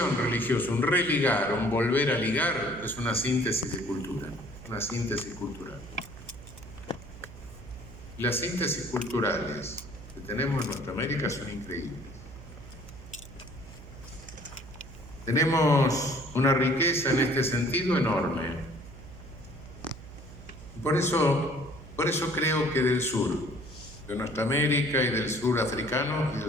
religiosa, un religar, un volver a ligar, es una síntesis de cultura, una síntesis cultural. Las síntesis culturales que tenemos en nuestra América son increíbles. Tenemos una riqueza en este sentido enorme. Por eso creo que del sur, de nuestra América y del sur africano y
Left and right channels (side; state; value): right; noise; hum, 16 dB below the sound